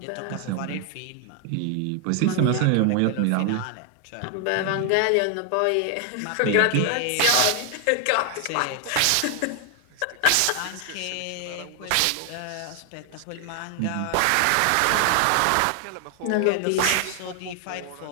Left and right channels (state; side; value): different; both; correlation 0.00